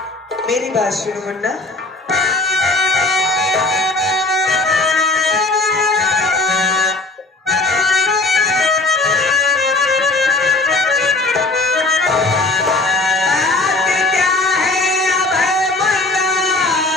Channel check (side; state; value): right; quieter; 3.1 dB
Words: मेरी बात सुनो मुन्ना,